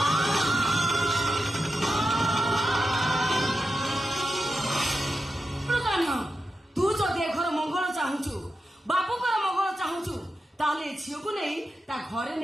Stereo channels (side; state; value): both; normal; correlation 0.89